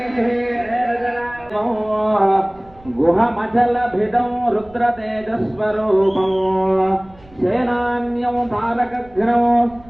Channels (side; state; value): right; noise; rumble, 26 dB below the sound